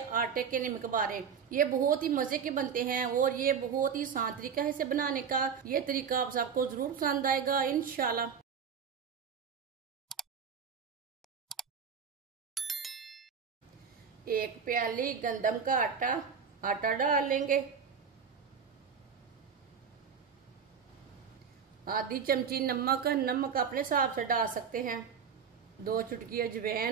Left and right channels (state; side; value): quieter; left; 6.7 dB